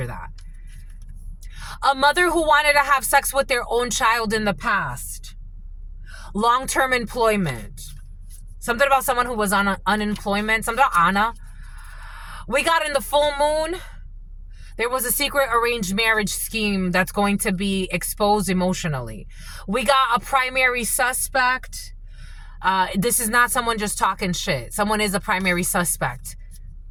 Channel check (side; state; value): both; identical; correlation 1.00